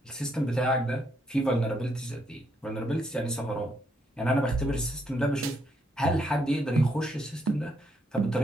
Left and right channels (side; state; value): both; normal; correlation 0.75